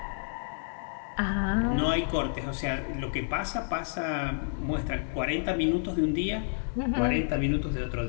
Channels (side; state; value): right; silent; digital silence